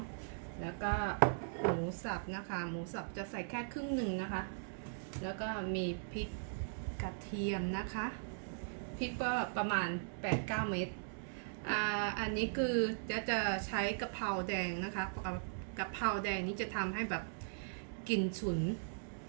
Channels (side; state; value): left; silent; digital silence